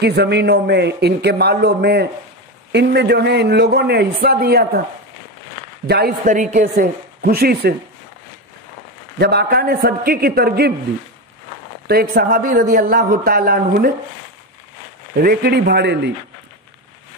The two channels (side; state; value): both; normal; correlation 0.16